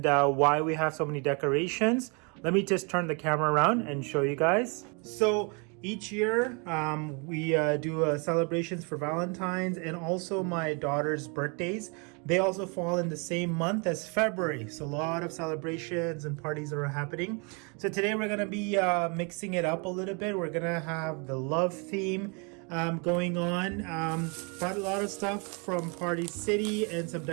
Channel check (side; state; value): left; quieter; 33.6 dB